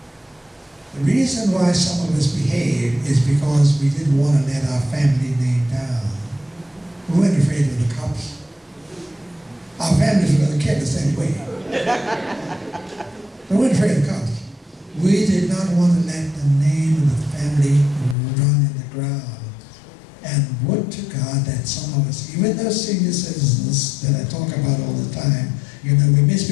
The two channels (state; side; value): drops out; right; at 18.2 s